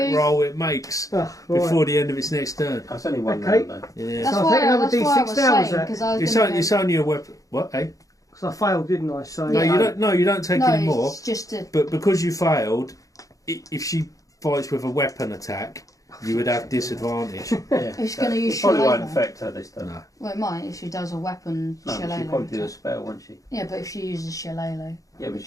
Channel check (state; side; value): late; right; 0.16 ms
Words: you. roll it makes before the end of its next turn. That's only one Okay. round, though. Yeah. That's So I why think another that's why I D6 was down, was saying, that? 'cause I was It's, gonna it's only a weapon. What? Eh? Because I failed, didn't I? So No, you don't. No, you don't take no, any more. it's just a... But because you failed, if she fights with a weapon attack, you would have disadvantage. Yeah. It's going to use Probably won't shillelagh. affect her this time. No. Well, it might if she does a weapon No, she'll shillelagh. probably do a spell, won't she? Yeah, but if she uses shillelagh, Yeah, but